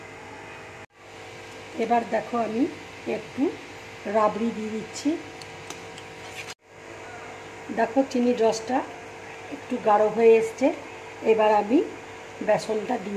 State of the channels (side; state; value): both; identical; correlation 1.00